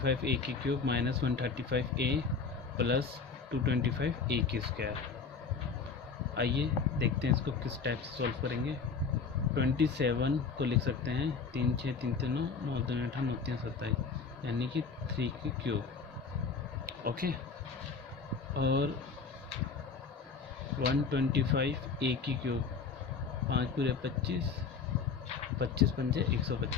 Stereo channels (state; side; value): quieter; right; 5.2 dB